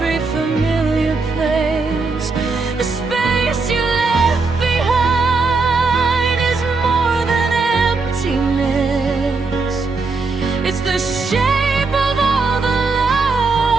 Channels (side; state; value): left; quieter; 4.0 dB